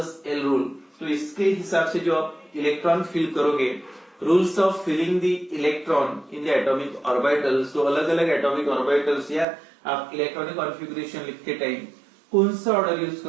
l रूल, तो इसके हिसाब से जो आप इलेक्ट्रॉन फिल करोगे, rules of filling the electron in the atomic orbitals, तो अलग अलग एटॉमिक ऑर्बिटल्स या आप इलेक्ट्रॉनिक कॉन्फ़िगरेशन लिखते टाइम कौन सा ऑर्डर यूज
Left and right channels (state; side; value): drops out; left; at 9.5 s